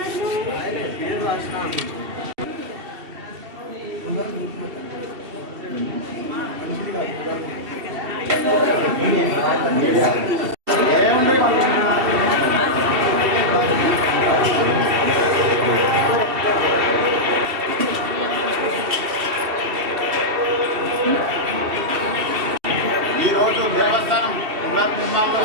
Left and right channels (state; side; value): late; left; 2.7 ms